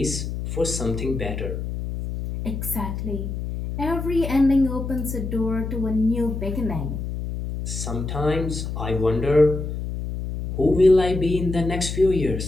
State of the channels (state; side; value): noise; left; hum, 5 dB below the sound